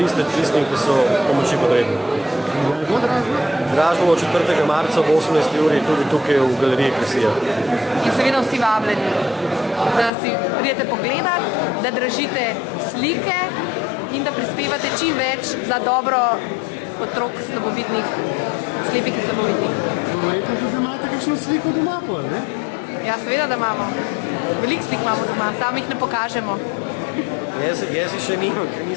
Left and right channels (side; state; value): right; drops out; at 10.1 s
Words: tistim, ki so pomoči potrebni. Dražba bo 4. marca ob 18. uri tudi tukaj v galeriji Kresija. In seveda vsi vabljeni, da si pridete pogledat, da dražite slike in da prispevate čim več za dobro otrok slabovidnih, slepih in slabovidnih. Verjetno tudi imate kakšno sliko doma, ne? Ja, seveda, da imamo. Veliko slik imamo doma, sami jih ne pokažemo. Jaz še nimam, ker